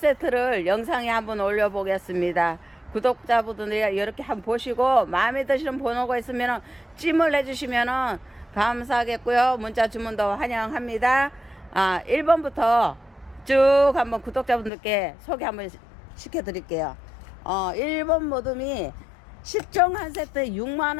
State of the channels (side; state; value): right; drops out; at 14.7 s